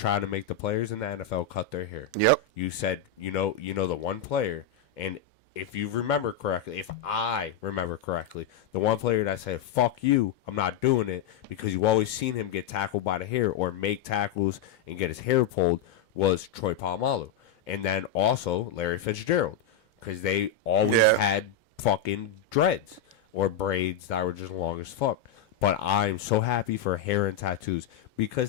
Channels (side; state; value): right; quieter; 6.1 dB